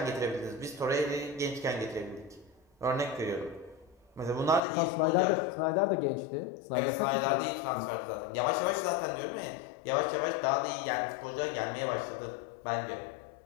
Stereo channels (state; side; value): drops out; right; at 4.6 s